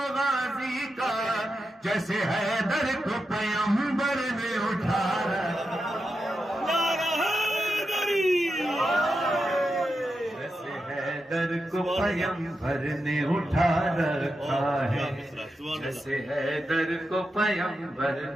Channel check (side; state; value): both; normal; correlation 0.88